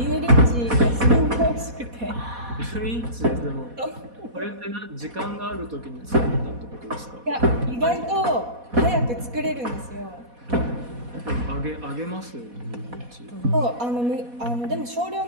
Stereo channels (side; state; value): left; late; 4.1 ms